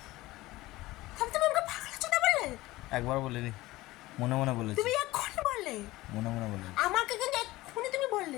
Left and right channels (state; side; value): quieter; right; 18.5 dB